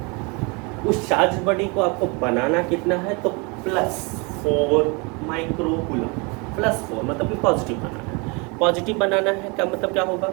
उस चार्ज बॉडी को आपको बनाना कितना है, तो +4 माइक्रोकूलम। +4 मतलब कि पॉजिटिव बनाना है। पॉजिटिव बनाना है क्या मतलब क्या होगा,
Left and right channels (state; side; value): quieter; left; 30.1 dB